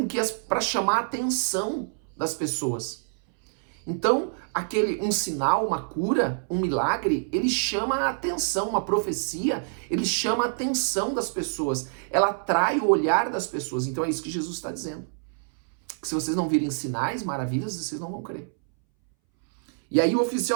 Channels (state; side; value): silent; left; 61 dB below the other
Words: que para chamar a atenção das pessoas. Então, um sinal, uma cura, um milagre, ele chama a atenção, uma profecia, ele chama a atenção das pessoas, ela atrai o olhar das pessoas. Então é isso que Jesus está dizendo. Que se vocês não virem sinais, maravilhas, vocês não vão crer. E aí o